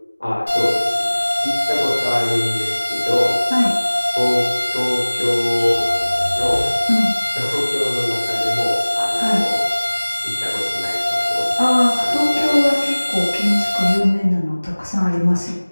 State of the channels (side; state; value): both; inverted; correlation -1.00